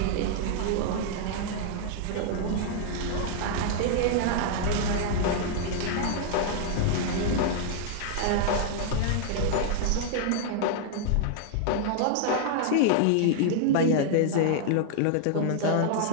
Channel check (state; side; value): different; both; correlation -0.01